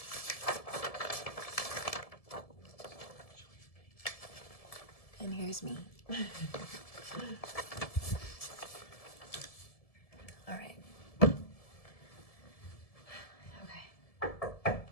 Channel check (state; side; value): late; right; 1.7 ms